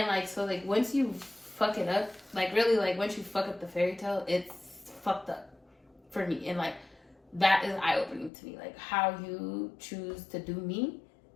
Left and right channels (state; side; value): drops out; right; at 8.3 s